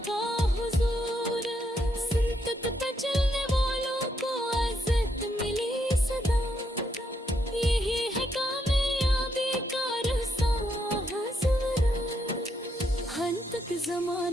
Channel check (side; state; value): both; normal; correlation 0.77